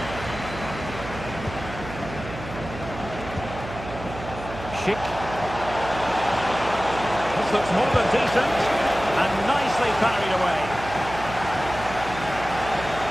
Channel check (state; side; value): noise; right; hum, 11 dB below the sound